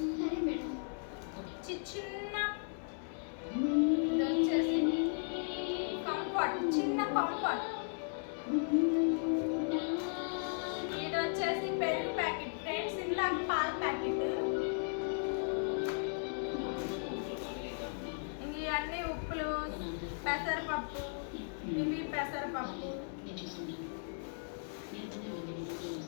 చిన్న ఇది వచ్చేసి కంఫర్ట్, చిన్న కంఫర్ట్, ఇది వచ్చేసి పెరుగు ప్యాకెట్ ఫ్రెండ్స్, ఇలా పాల ప్యాకెట్, ఇవన్నీ ఉప్పులు, పెసరపప్పు, ఇవి పెసరపప్పు,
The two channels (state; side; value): silent; right; digital silence